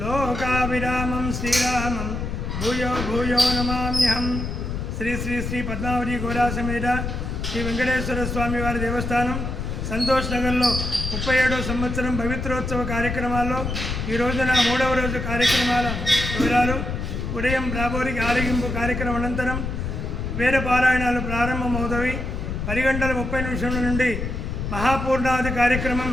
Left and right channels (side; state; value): left; noise; rumble, 4 dB below the sound